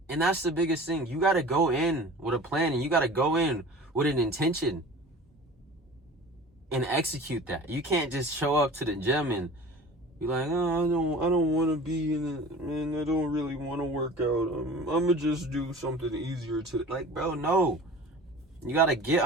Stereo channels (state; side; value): normal; both; correlation 0.40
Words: And that's the biggest thing. You got to go in with a plan, and you got to go in with an intention and execute that. You can't just show up to the gym and Be like, oh, I don't want to be in it, man. I don't really want to work out. I'm gonna just do something easier to, like, bro, no. You gotta get